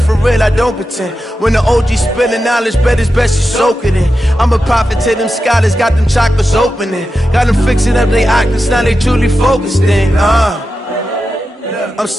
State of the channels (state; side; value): normal; both; correlation 0.90